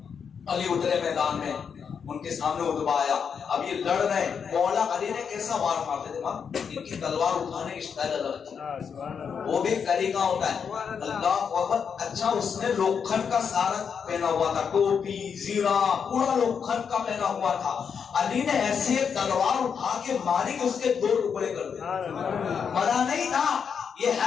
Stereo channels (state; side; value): quieter; right; 6.7 dB